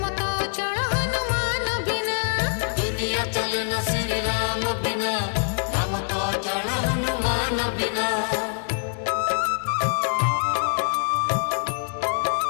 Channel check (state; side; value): silent; right; 62 dB below the other